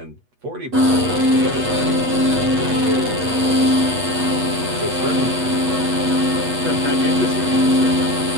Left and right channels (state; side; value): late; left; 8.2 ms